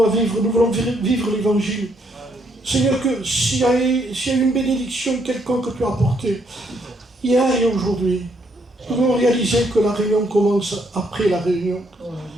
à vivre, nous voulons vivre l'évangile. Seigneur, que s'il y a eu une bénédiction quelconque que tu as apportée, hier et aujourd'hui, nous voulons réaliser que la réunion commence après la réunion.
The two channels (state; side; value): normal; both; correlation 0.72